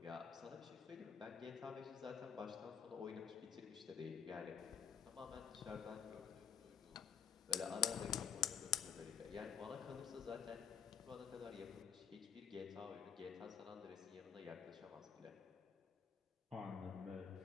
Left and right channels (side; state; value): right; quieter; 7.8 dB